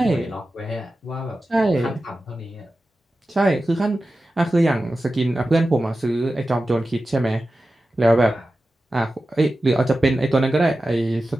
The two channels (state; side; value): normal; both; correlation 0.93